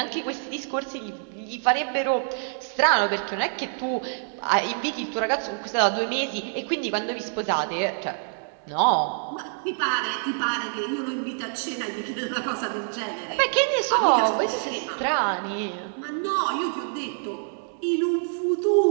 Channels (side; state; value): left; silent; digital silence